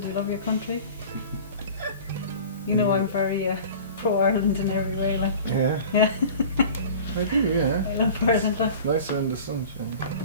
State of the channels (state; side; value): inverted; both; correlation -0.41